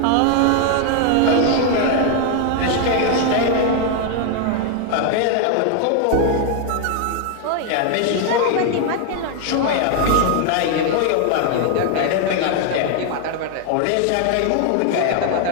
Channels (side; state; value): both; different; correlation 0.00